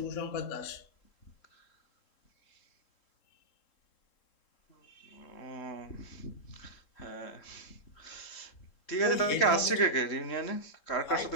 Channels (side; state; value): right; late; 3.7 ms